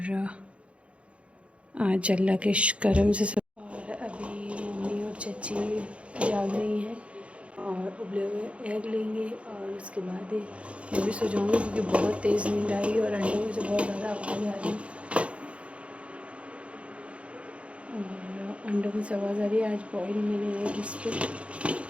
आज अल्लाह के करम से सब। और अभी मम्मी और चाची जाग रही हैं और उबले हुए एग लेंगे और उसके बाद मैं भी सो जाऊँगी, क्योंकि बहुत तेज़ नींद आई और अंडों में से बहुत ज़्यादा आवाज़ आ रही है। और अंडों में से आवाज़ आ रही है। आज बॉयल मैंने एग इस पर,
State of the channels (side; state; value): left; late; 0.061 ms